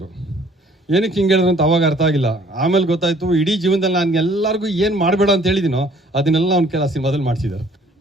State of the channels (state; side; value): normal; both; correlation 0.58